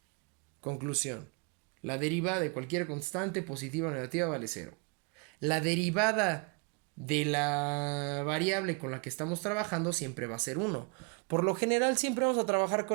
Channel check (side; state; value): left; quieter; 32.6 dB